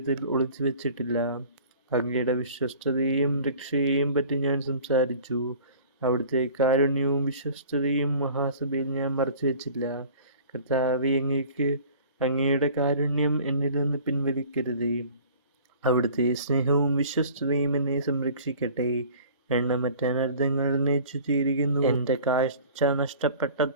ഒളിച്ചു വെച്ചിട്ടില്ല. അങ്ങയുടെ വിശ്വസ്തതയെയും രക്ഷയെയും പറ്റി ഞാൻ സംസാരിച്ചു. അവിടുത്തെ കാരുണ്യവും വിശ്വസ്തതയും മഹാസഭയിൽ ഞാൻ മറച്ചു വെച്ചില്ല. കർത്താവേ, അങ്ങയുടെ കാരുണ്യം എന്നിൽ നിന്ന് പിൻവലിക്കരുതേ. അവിടുത്തെ സ്നേഹവും വിശ്വസ്തതയും എന്നെ സംരക്ഷിക്കട്ടെ. എണ്ണമറ്റ അനർത്ഥങ്ങൾ എന്നെ ചുറ്റിയിരിക്കുന്നു. എൻ്റെ കാഴ്ച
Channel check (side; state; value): both; inverted; correlation -0.46